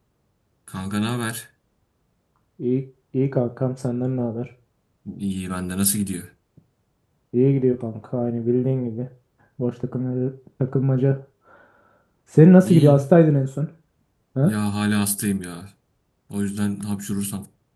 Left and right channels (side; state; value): both; identical; correlation 1.00